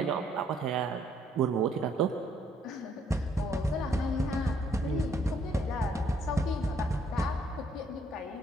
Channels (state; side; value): normal; both; correlation 0.68